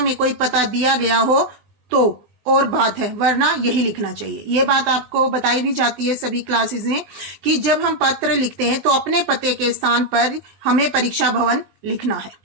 कोई पता दिया गया हो तो और बात है, वरना यही लिखना चाहिए। ये बात आपको बताई भी जाती है सभी क्लासेस में कि जब हम पत्र लिखते हैं तो अपने पते के स्थान पर हमें परीक्षा भवन लिखना है।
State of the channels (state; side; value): late; left; 19 ms